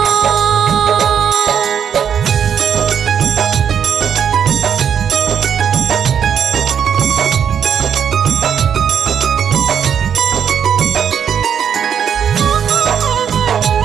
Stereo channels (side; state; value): left; quieter; 8.1 dB